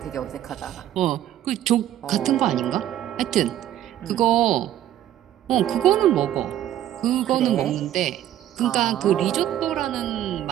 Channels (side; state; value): left; quieter; 12.1 dB